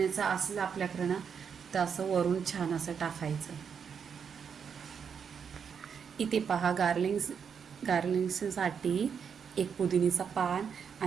असलं आपल्याकडं ना तर असं वरून छान असं टाकायचं. इथे पहा गार्लिंगसाठी एक पुदिनीचा पान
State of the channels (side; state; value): left; quieter; 6.9 dB